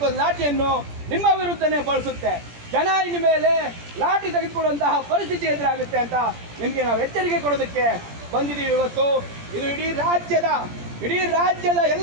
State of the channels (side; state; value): left; late; 17 ms